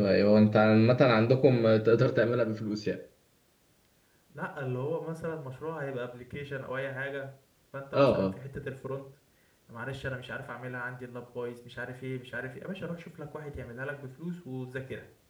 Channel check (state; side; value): identical; both; correlation 1.00